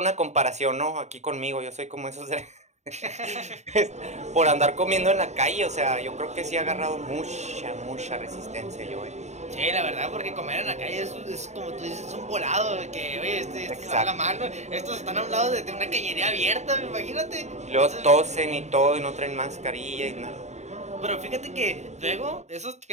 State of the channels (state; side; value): late; left; 0.33 ms